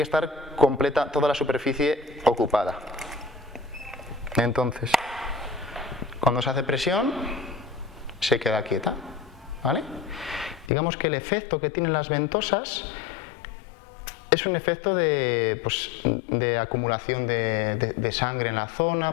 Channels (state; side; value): drops out; right; at 10.7 s